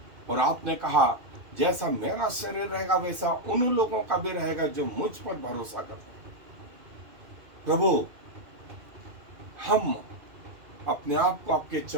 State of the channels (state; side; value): late; left; 2.5 ms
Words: और आपने कहा जैसा मेरा शरीर रहेगा वैसा उन लोगों का भी रहेगा जो मुझ पर भरोसा करते हैं। प्रभु, हम अपने आप को आपके